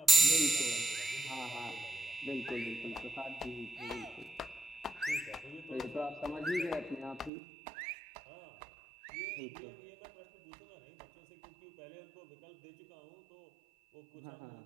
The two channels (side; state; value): left; drops out; at 7.3 s